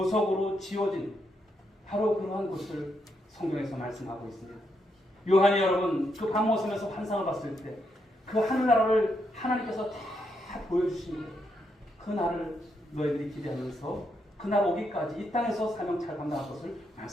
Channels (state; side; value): normal; both; correlation 0.79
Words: 지어진 바로 그러한 곳을 성경에서 말씀하고 있습니다. 요한이 여러분 그 밤모섬에서 환상을 봤을 때 그 하늘나라를 하나님께서 다 보여주십니다. 그 날을 너희들이 기대하면서 그날 오기까지 이 땅에서 사명 잘 감당할 것을